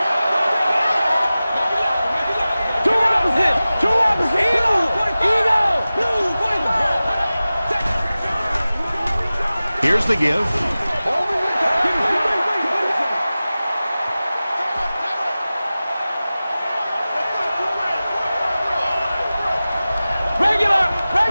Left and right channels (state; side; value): inverted; both; correlation -0.96